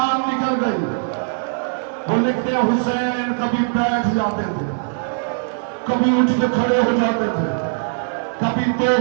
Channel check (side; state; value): left; silent; digital silence